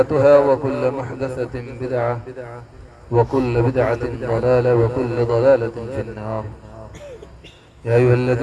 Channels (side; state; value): both; identical; correlation 1.00